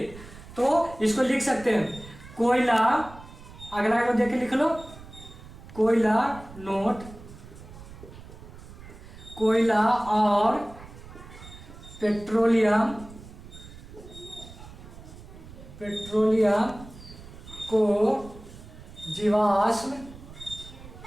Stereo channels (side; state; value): right; noise; rumble, 17 dB below the sound